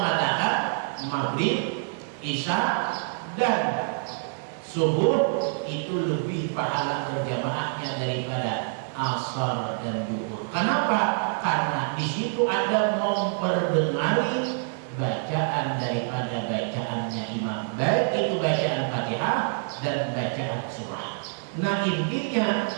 maghrib, isya dan subuh itu lebih pahala berjamaahnya daripada asar dan zuhur. Kenapa? Karena di situ ada memperdengari bacaan daripada bacaannya imam, baik itu bacaan Fatihah dan bacaan surah. Nah, intinya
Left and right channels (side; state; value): left; silent; digital silence